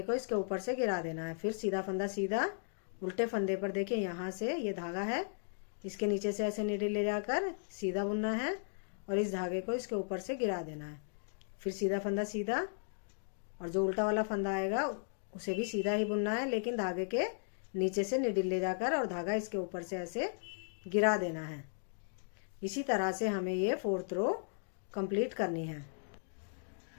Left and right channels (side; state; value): right; silent; digital silence